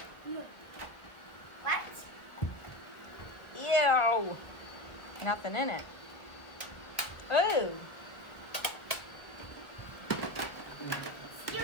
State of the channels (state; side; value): late; right; 1.2 ms